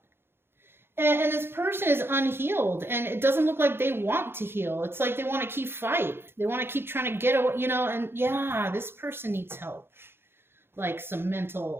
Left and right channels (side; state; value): left; late; 0.11 ms